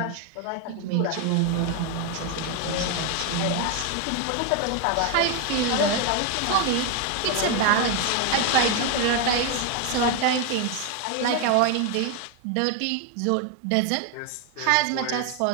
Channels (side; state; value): both; different; correlation 0.01